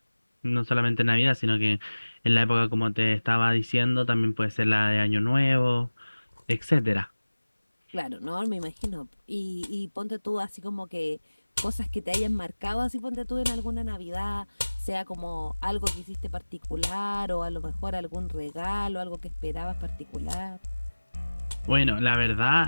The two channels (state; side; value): inverted; both; correlation -1.00